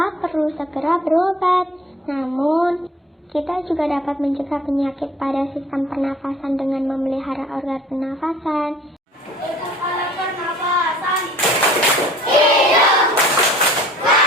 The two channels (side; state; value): both; normal; correlation 0.51